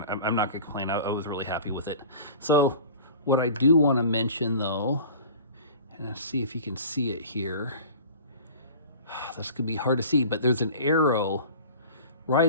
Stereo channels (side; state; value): both; inverted; correlation -0.41